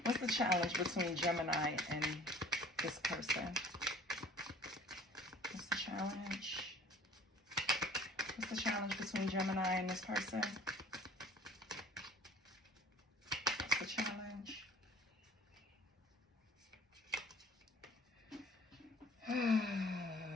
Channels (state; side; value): normal; both; correlation 0.50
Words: What's the challenge between Gemini and this person? What's the challenge? What's the challenge between Gemini and this person? What's the challenge?